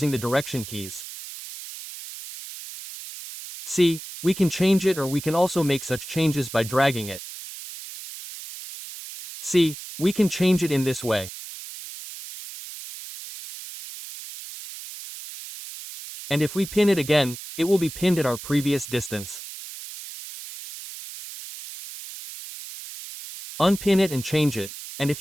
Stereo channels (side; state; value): right; noise; hiss, 12 dB below the sound